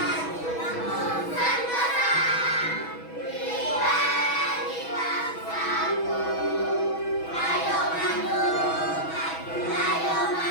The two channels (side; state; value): right; late; 6.2 ms